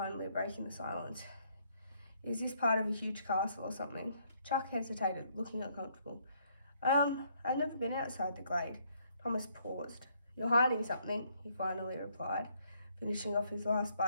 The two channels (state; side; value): inverted; both; correlation -0.69